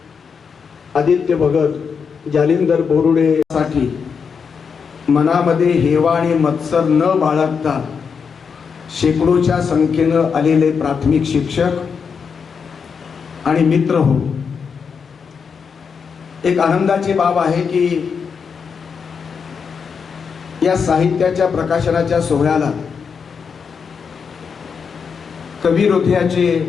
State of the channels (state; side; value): quieter; right; 6.1 dB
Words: आदित्य भगत, जालिंदर बोरुडे साठी मनामध्ये हेवा आणि मत्सर न बाळगता शेकडोच्या संख्येनं आलेले प्राथमिक शिक्षक आणि मित्र हो, एक आनंदाची बाब आहे की या साहित्याच्या प्रकाशनाच्या सोहळ्याला कवी हृदयाचे